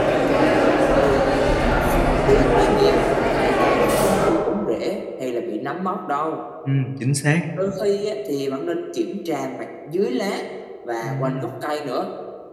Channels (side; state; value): both; identical; correlation 1.00